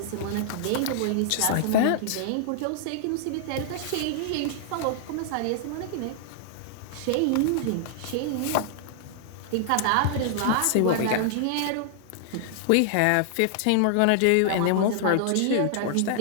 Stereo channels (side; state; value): both; different; correlation -0.01